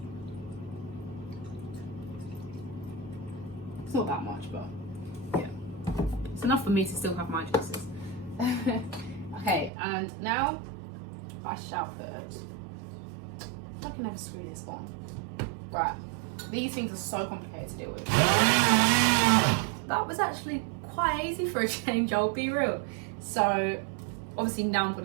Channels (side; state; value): left; drops out; at 9.7 s